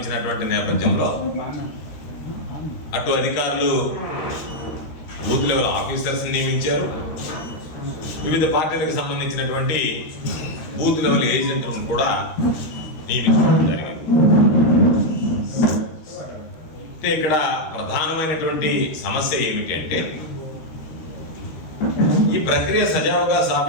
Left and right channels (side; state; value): right; late; 13 ms